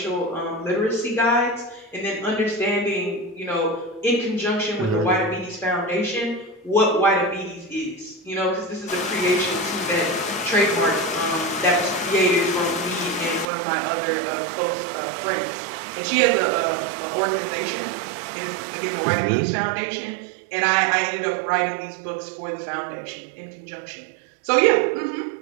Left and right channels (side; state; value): left; drops out; at 13.5 s